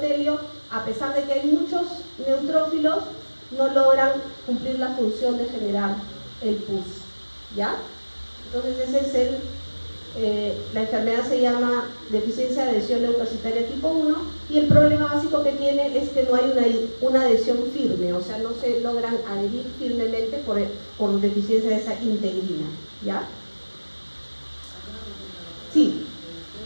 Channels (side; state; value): both; inverted; correlation -1.00